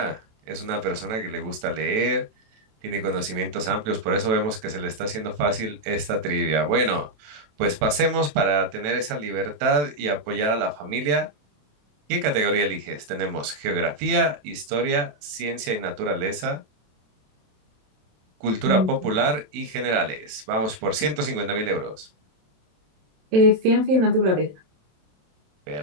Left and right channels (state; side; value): late; left; 27 ms